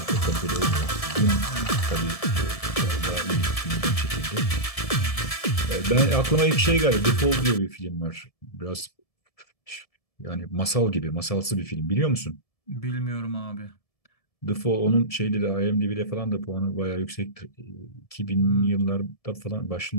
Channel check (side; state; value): right; late; 1.7 ms